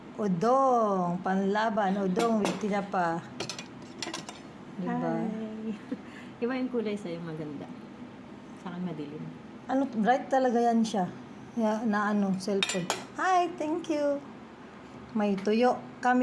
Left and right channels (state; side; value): identical; both; correlation 1.00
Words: Udong. Panlaban. Udong with tinapa. Diba? Hi. Iba yung kulay sa'yo maganda. Sa akin madilim. Bright talaga yan siya. Cellphone. Hi, thank you. May tuyo